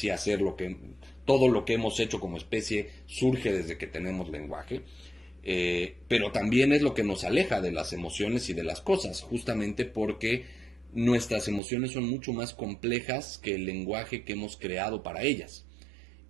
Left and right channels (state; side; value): drops out; left; at 11.6 s